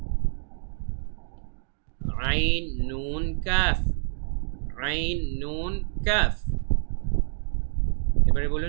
আইন, নুন, কাফ। আইন, নুন, কাফ। এবারে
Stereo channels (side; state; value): left; silent; 58 dB below the other